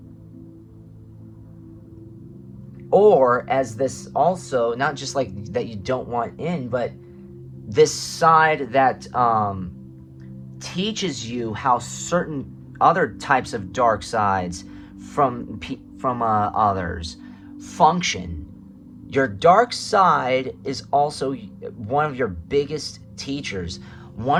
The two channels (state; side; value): identical; both; correlation 1.00